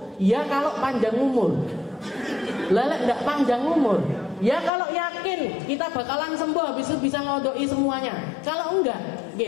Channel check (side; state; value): right; drops out; at 4.7 s